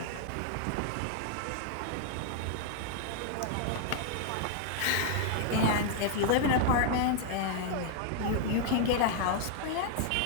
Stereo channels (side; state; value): both; different; correlation 0.00